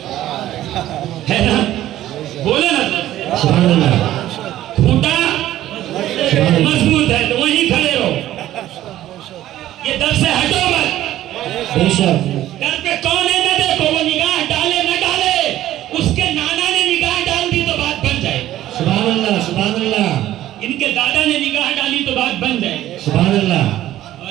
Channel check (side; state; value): left; quieter; 13.6 dB